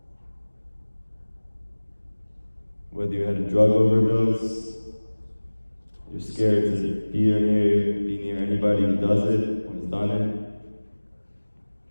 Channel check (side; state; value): both; inverted; correlation -1.00